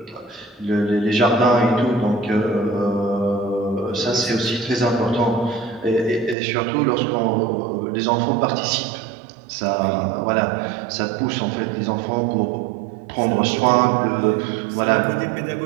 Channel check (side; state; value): left; drops out; at 6.4 s